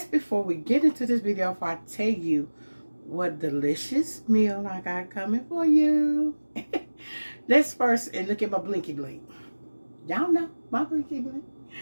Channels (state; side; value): inverted; both; correlation -1.00